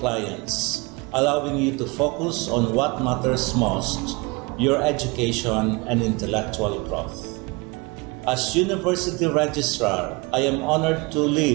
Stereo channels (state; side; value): quieter; left; 27.0 dB